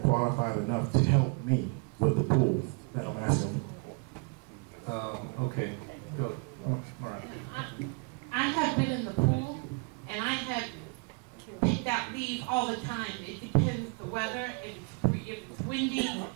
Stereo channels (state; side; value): quieter; left; 31.7 dB